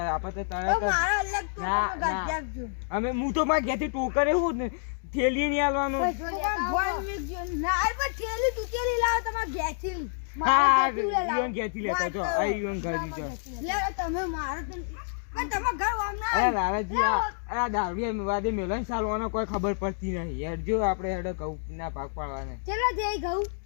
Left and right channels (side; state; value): right; silent; digital silence